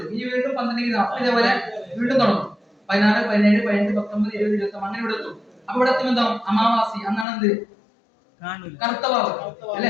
ഇനി വീണ്ടും 12 ഡിഗ്രി. അപ്പൊ ഇതേപോലെ വീണ്ടും തുടങ്ങും. 16, 17, 18, 19, 20, 21 അങ്ങനെ ഇവിടെ എത്തും. അപ്പൊ ഇവിടെ എത്തുമ്പോൾ എന്താവും? അമാവാസി. അന്നാണ് എന്ത്? കറുത്തവാവ്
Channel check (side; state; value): right; drops out; at 7.2 s